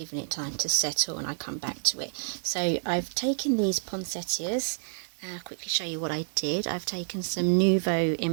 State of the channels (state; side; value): silent; left; 59 dB below the other